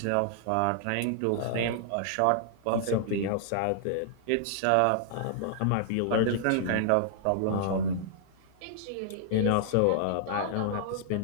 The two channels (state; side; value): different; both; correlation -0.01